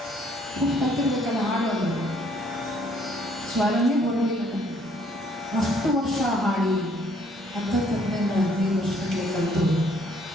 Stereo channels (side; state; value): both; normal; correlation 0.64